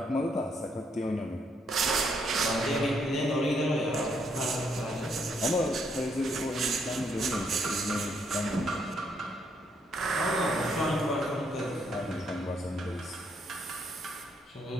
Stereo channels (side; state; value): both; normal; correlation 0.73